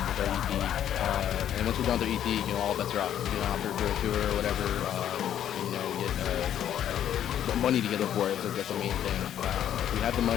with our EP. And once we're done with our EP, you know, all bets are off. We get on out there for a tour or whatever, and, you know, we get money together for it. So that's the main thing. If we have the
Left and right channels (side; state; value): right; quieter; 10.4 dB